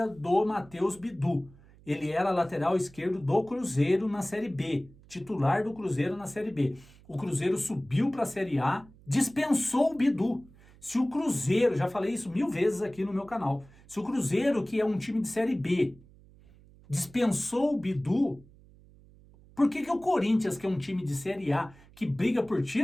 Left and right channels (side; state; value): right; noise; hum, 25 dB below the sound